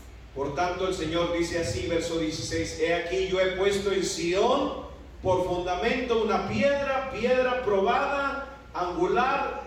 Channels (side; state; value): both; identical; correlation 1.00